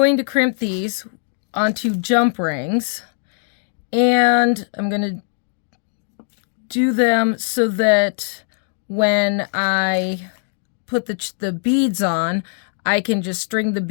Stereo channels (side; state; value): right; silent; 57 dB below the other